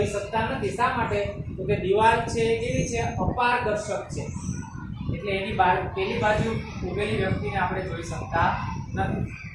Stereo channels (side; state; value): both; identical; correlation 1.00